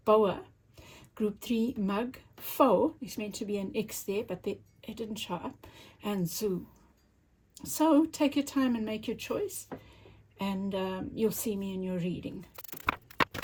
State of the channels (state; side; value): identical; both; correlation 1.00